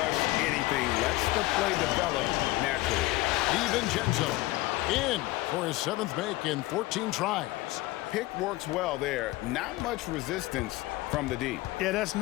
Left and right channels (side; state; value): right; quieter; 19.0 dB